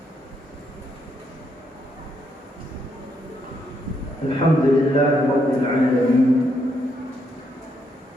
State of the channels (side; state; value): both; normal; correlation 0.76